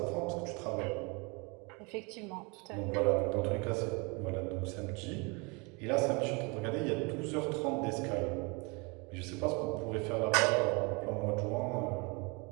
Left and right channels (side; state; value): left; quieter; 29.5 dB